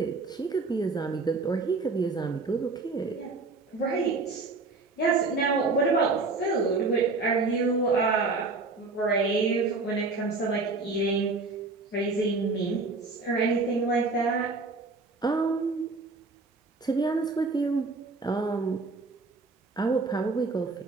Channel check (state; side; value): quieter; left; 3.8 dB